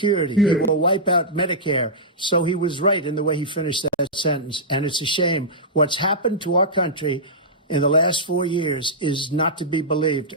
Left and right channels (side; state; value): both; normal; correlation -0.13